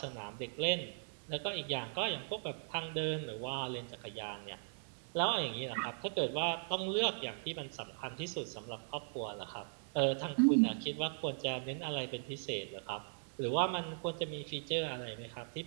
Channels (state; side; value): silent; left; 52 dB below the other